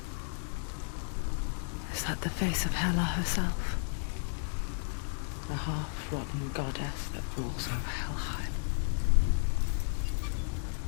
Is that the face of Hela herself? The half-rotten goddess that rules over Helheim.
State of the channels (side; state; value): right; silent; digital silence